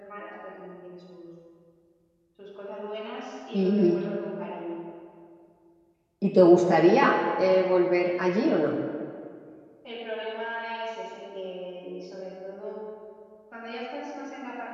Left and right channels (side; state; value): both; identical; correlation 1.00